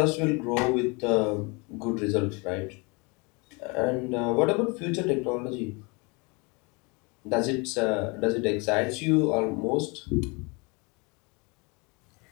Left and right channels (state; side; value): quieter; right; 29.2 dB